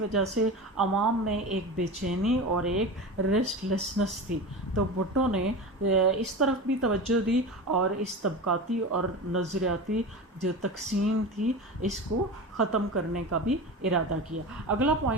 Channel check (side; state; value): both; normal; correlation 0.28